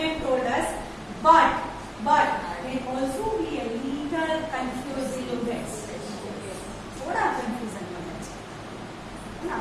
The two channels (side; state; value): both; identical; correlation 1.00